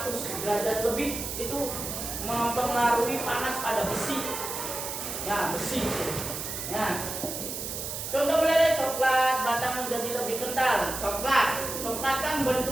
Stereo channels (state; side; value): noise; right; hiss, 5 dB below the sound